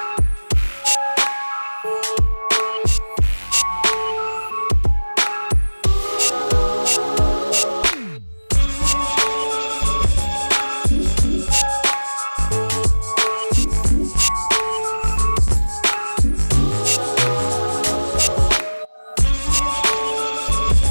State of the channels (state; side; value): inverted; both; correlation -1.00